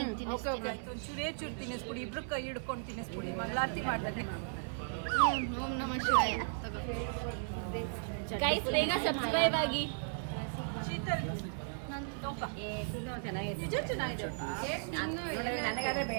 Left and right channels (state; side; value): silent; left; digital silence